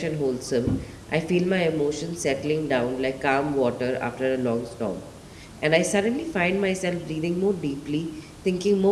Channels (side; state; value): both; identical; correlation 1.00